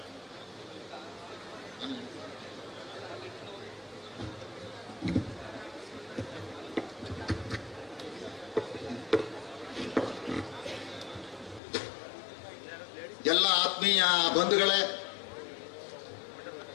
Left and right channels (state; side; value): drops out; right; at 11.6 s